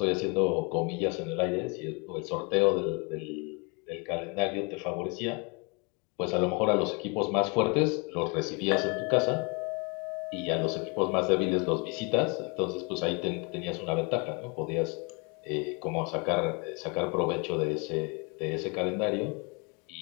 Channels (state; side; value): quieter; right; 31.8 dB